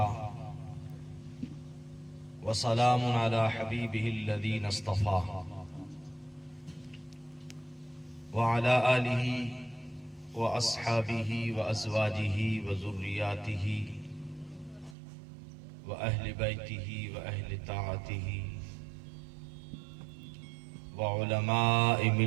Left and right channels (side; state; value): left; drops out; at 15.0 s